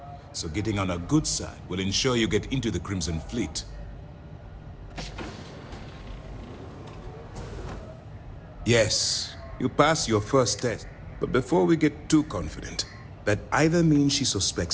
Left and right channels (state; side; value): identical; both; correlation 1.00